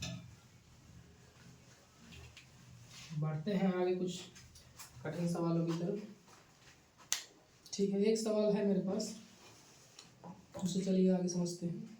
बढ़ते हैं आगे कुछ कठिन सवालों की तरफ। ठीक है, एक सवाल है मेरे पास, उसे चलिए आगे समझते हैं।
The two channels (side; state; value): both; identical; correlation 1.00